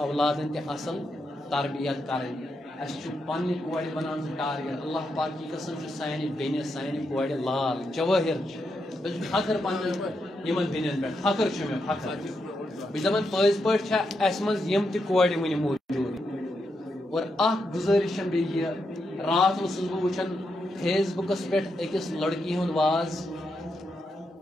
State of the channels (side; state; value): both; normal; correlation 0.83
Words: تہِ اصل تربیت کرٕنۍ اَسہِ چھُ پننہِ کورِ بنان سُہ ٹارگیٹ اللہ پاک کی قسم چھُ سانہِ بیٚنہِ سانہِ کورِ لال جوٲہر چھِ مےٚ چھُ فخر پننٮ۪ن یِمن بیٚنٮ۪ن پٮ۪ٹھ فخر چھُ مےٚ فخر بہٕ چھُس دپان پٔزۍ پٲٹھۍ چھےٚ اَسہِ منٛز یِم تہِ کورِ وٕنہِ موٗجوٗد اور اکھ گُزٲرِش چھم بیٚیہِ یہِ راتھ اوسُس بہٕ وٕچھان فیس بُکس پٮ۪ٹھ أکِس لڑکی ہُنٛد واز